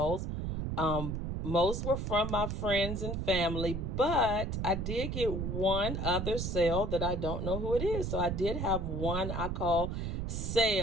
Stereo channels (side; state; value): right; noise; rumble, 2 dB below the sound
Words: Most were from my friends and family, but I did get one other sale that I don't know who it is. So I did have one I call